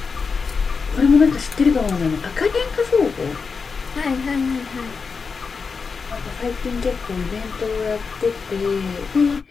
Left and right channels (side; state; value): right; quieter; 5.1 dB